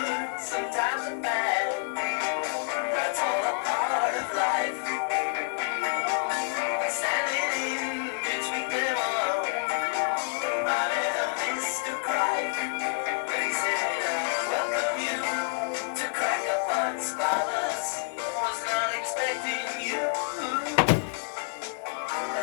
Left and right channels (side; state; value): right; silent; digital silence